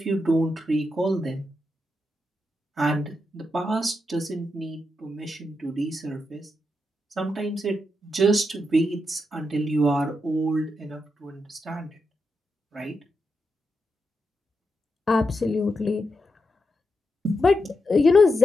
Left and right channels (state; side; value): normal; both; correlation 0.85